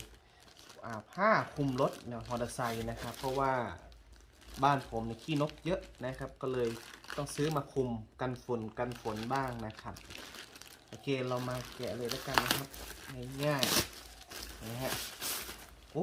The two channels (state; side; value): identical; both; correlation 1.00